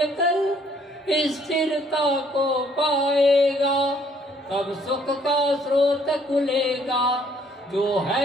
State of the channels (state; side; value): normal; both; correlation 0.63